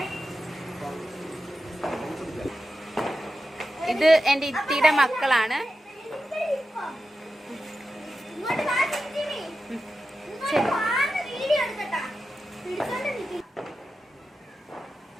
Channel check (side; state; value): both; normal; correlation 0.91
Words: ഇത് എന്റെ ഇത്തിയുടെ മക്കളാണ്.